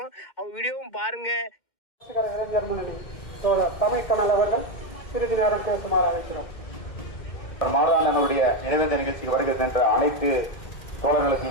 அவங்க வீடியோவும் பாருங்க. இளைஞர் முன்னணி தமிழ் கனல் அவர்கள் சிறிது நேரம் பேசுமாறு அழைக்கிறோம். மாதாளனுடைய நினைவேந்த நிகழ்ச்சிக்கு வருகின்ற அனைத்து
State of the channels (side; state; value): right; late; 2.1 ms